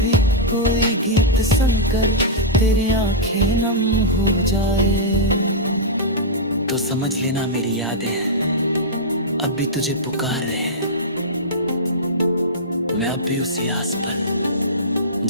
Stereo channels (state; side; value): normal; both; correlation -0.11